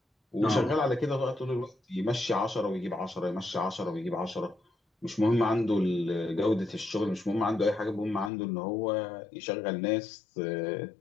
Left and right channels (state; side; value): drops out; right; at 8.3 s